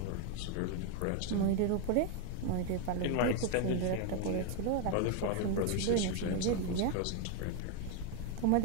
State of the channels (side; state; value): both; different; correlation 0.01